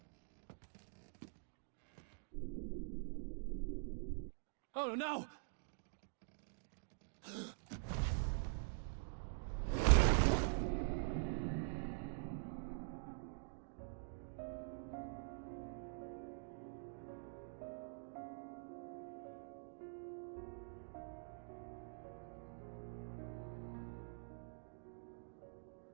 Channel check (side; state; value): left; silent; digital silence